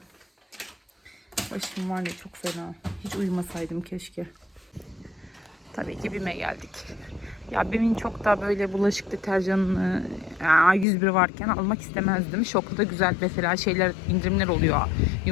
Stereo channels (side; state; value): right; drops out; at 10.9 s